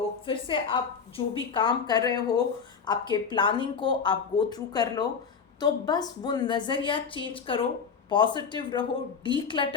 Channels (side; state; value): right; quieter; 6.1 dB